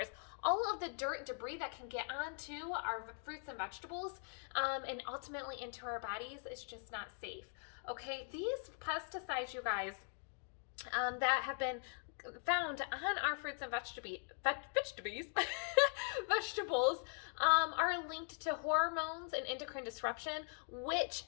All of the dirt and debris that can get onto our fruits and vegetables and ultimately into our bodies is just not safe. Okay, these pesticides, you guys, that have been found on our fruits and vegetables are linked to hormones and endocrine disruption, which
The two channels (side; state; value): right; silent; 50 dB below the other